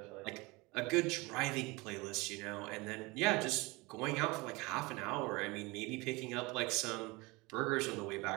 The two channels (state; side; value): quieter; left; 24.5 dB